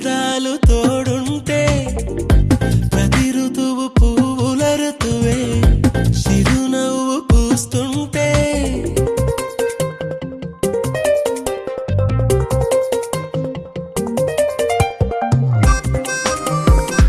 తోడుంటే ప్రతి ఋతువు పువ్వుల ఋతువే చిరునవ్వు పూస్తుంటే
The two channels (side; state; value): both; identical; correlation 1.00